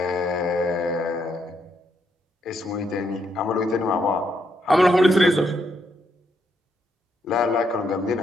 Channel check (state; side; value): normal; both; correlation 0.77